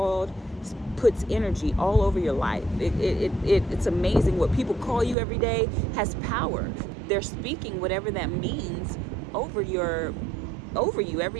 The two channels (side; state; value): left; drops out; at 5.2 s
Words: puts energy all over your life. It's amazing what people call you every day has power. They're speaking whatever that means over you